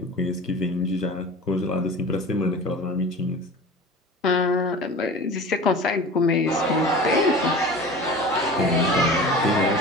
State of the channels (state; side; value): normal; both; correlation 0.37